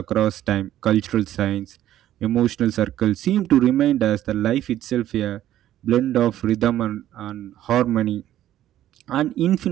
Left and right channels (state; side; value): quieter; left; 12.6 dB